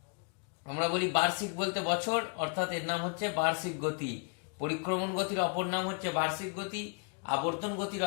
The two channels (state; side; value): quieter; right; 39.8 dB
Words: আমরা বলি বার্ষিক বলতে বছর, অর্থাৎ এর নাম হচ্ছে বার্ষিক গতি। পরিক্রমণ গতির অপর নাম হচ্ছে বার্ষিক গতি, আবর্তন গতির